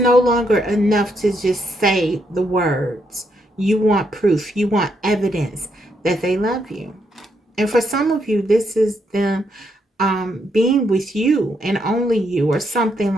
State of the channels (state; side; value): normal; both; correlation 0.77